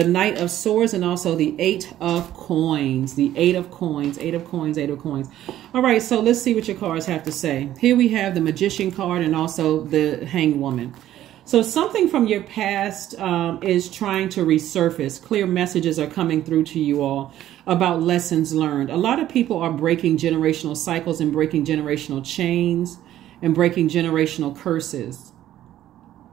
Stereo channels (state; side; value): quieter; left; 12.8 dB